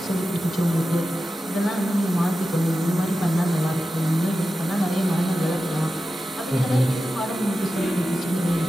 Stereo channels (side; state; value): both; normal; correlation 0.93